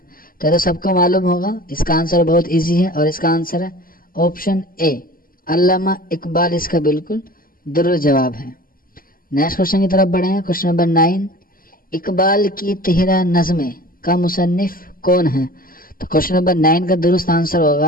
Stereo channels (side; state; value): right; late; 0.42 ms